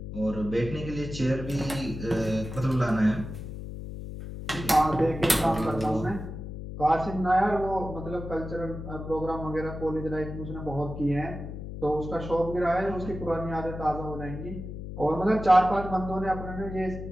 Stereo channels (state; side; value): noise; left; hum, 9 dB below the sound